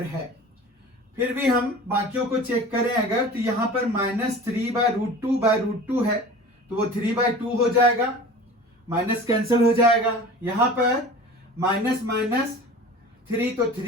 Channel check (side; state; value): both; normal; correlation 0.39